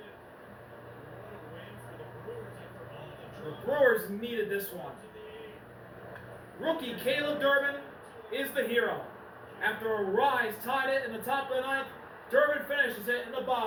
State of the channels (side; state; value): both; identical; correlation 1.00